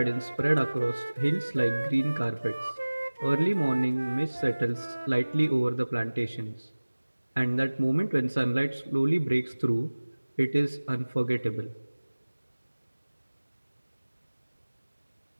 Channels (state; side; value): inverted; both; correlation -1.00